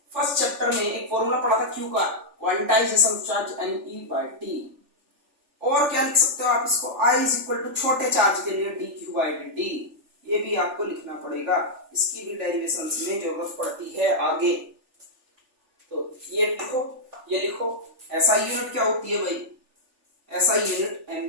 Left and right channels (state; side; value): late; left; 3.4 ms